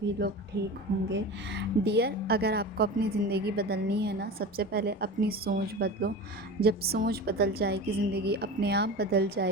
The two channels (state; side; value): normal; both; correlation 0.30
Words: लोग ठीक होंगे। डियर, अगर आपको अपनी ज़िंदगी बदलनी है ना, सबसे पहले अपनी सोच बदलो। जब सोच बदल जाएगी, ज़िंदगी अपने आप बदल